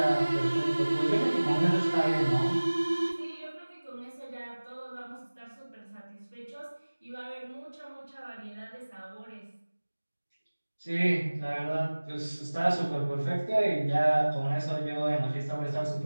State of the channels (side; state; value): both; inverted; correlation -1.00